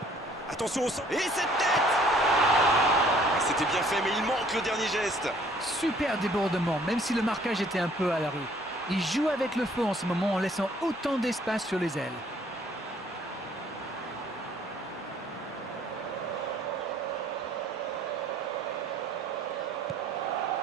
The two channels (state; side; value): normal; both; correlation 0.59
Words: Attention au centre. Et cette tête! C'était bien fait, mais il manque le dernier geste. Super débordement, même si le marquage était un peu à la rue. Il joue avec le feu en ce moment en laissant autant d'espace sur les ailes.